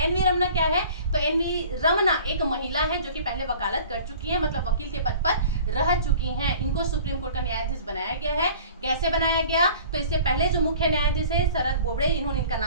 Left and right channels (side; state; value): both; inverted; correlation -0.46